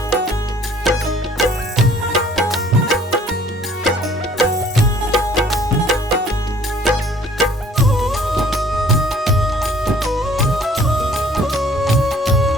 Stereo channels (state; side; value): normal; both; correlation 0.56